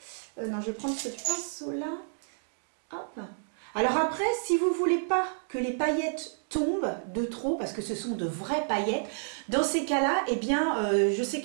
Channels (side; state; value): left; silent; digital silence